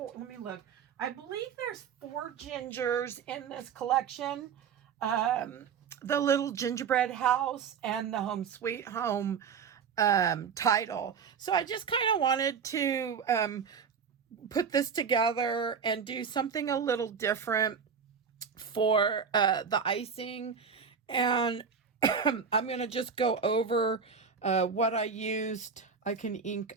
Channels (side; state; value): left; quieter; 6.4 dB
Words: Let me look. I believe there's 4 gingers in this collection. The Little Gingerbread House and the Home Sweet Home title. So I just kind of wanted to put this together and do something a little different for the icing. And I'm going to just go over what I used. I can ink